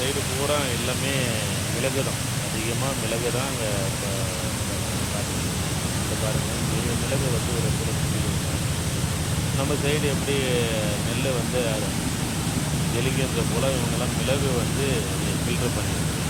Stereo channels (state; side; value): identical; both; correlation 1.00